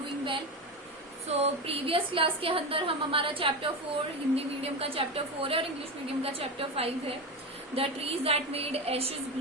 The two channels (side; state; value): both; normal; correlation 0.19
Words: well. So, previous class के अंदर हम हमारा chapter 4 Hindi medium का chapter 4 है और इंग्लिश मीडियम का चैप्टर 5 है. The trees that made ashes